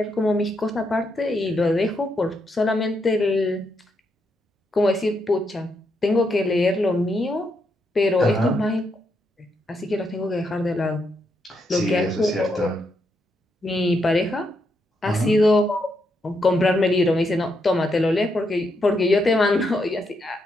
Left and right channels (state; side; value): normal; both; correlation 0.80